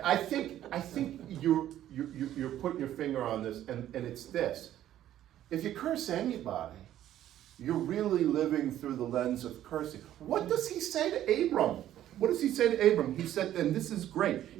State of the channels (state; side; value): quieter; left; 12.2 dB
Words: I think you're putting your finger on this, and it's this. If you curse anybody, you're really living through the lens of cursing. What does he say to Abram? What does he say to Abram? He said, and this is great,